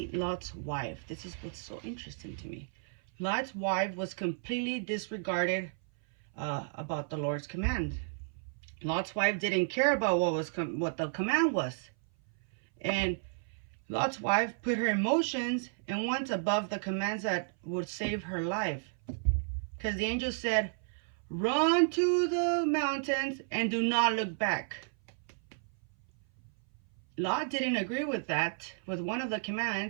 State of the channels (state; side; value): silent; left; 56 dB below the other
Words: Lot's wife. This is what's so interesting to me. Lot's wife was completely disregarded about the Lord's command. Lot's wife didn't care about what the command was. And Lot's wife put her emotions and went above the commands that would save her life. Because the angel said, run to the mountains and do not look back. Lot didn't agree with that, with one of the